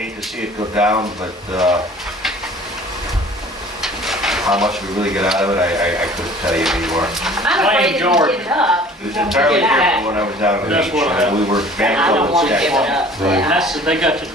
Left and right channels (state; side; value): normal; both; correlation 0.49